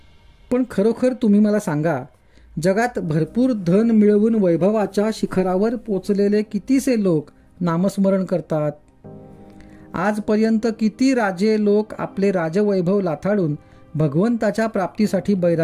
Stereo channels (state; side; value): identical; both; correlation 1.00